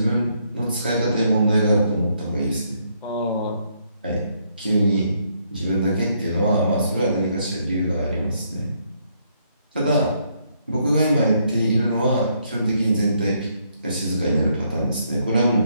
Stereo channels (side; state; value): both; inverted; correlation -0.73